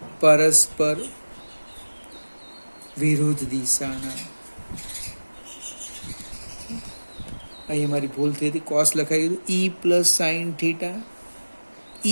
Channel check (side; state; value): both; inverted; correlation -1.00